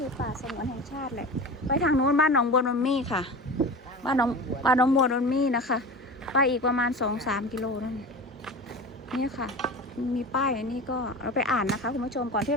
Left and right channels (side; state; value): both; normal; correlation 0.32